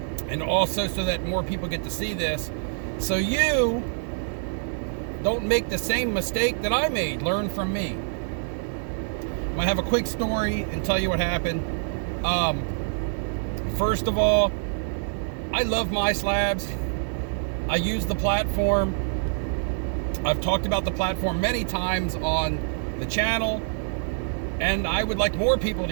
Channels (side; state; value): left; silent; digital silence